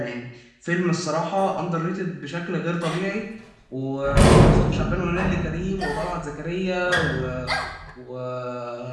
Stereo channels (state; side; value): identical; both; correlation 1.00